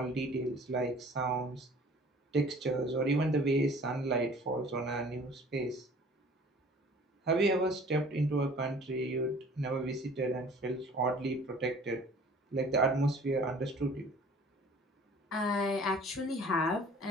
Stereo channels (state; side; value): normal; both; correlation 0.49